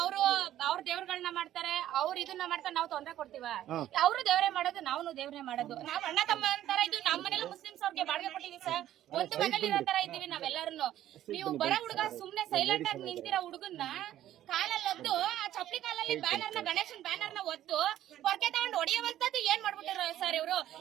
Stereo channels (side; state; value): left; quieter; 12.5 dB